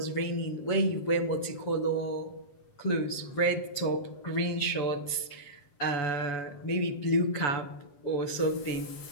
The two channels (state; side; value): late; right; 7.6 ms